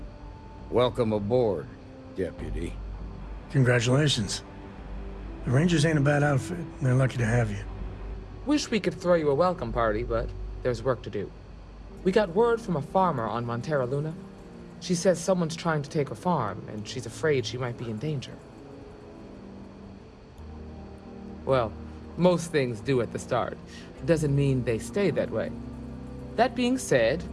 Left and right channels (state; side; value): identical; both; correlation 1.00